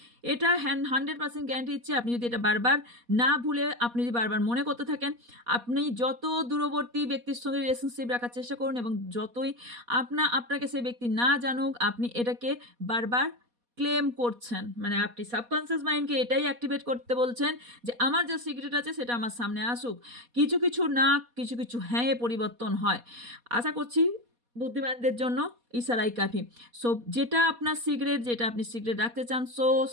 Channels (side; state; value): left; late; 4.2 ms